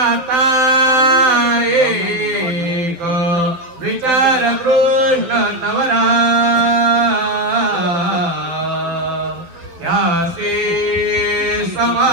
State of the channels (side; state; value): left; late; 12 ms